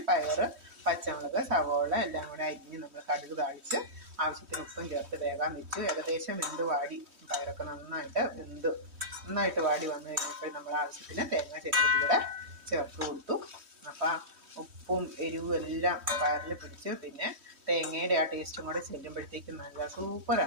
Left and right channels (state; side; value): late; left; 3.1 ms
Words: പയറ്, പച്ചമുളക്, സവോള എല്ലാം കൂടെ അരിഞ്ഞ് നമ്മൾ കടുക് താളിച്ച് ആവശ്യത്തിന് ഉപ്പും ചേർത്ത് വേഗം വെച്ചു. ഏകദേശം വെന്ത് വാടി, പയറൊക്കെ നന്നായിട്ട് വാടി വന്നു കഴിഞ്ഞപ്പോൾ നമ്മൾ ആവശ്യത്തിന് തേങ്ങ ചെറുകൂടെ ചേർത്ത് കൊടുത്തു. അപ്പം ഉപ്പും എരിവും എല്ലാം പയറിൽ പിടിച്ച്, പിന്നെ തേങ്ങയുടെ ആ ടേസ്റ്റും കൂടെ ചെല്ലുമ്പോഴത്തേക്കും നല്ല